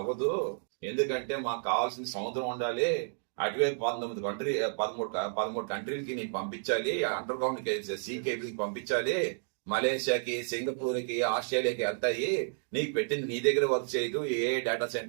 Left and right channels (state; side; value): silent; left; digital silence